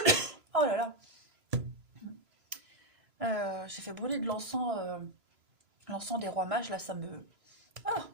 Oh là là, j'ai fait brûler de l'encens, l'encens des rois mages, là ça me... Ah.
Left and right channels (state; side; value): late; left; 3.0 ms